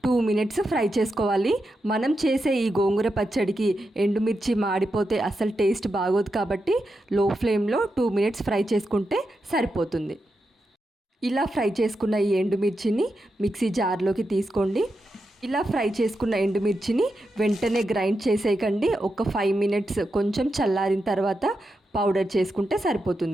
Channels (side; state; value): both; normal; correlation 0.87